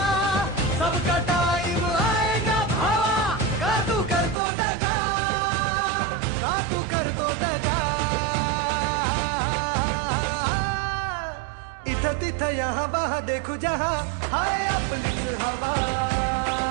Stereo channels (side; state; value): left; drops out; at 4.4 s